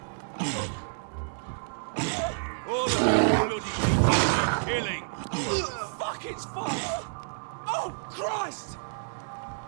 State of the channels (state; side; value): silent; left; digital silence